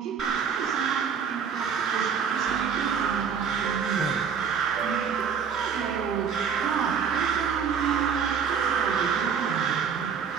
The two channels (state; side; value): quieter; left; 6.9 dB